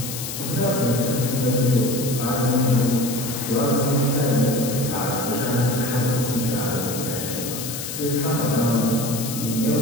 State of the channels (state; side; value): noise; left; hiss, 7 dB below the sound